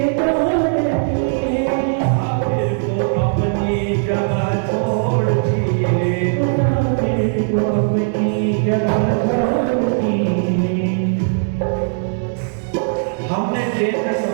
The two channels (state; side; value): silent; left; digital silence